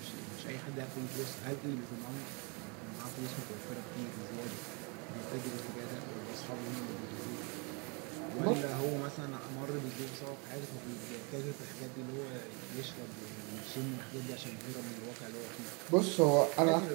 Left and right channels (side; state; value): left; quieter; 32.6 dB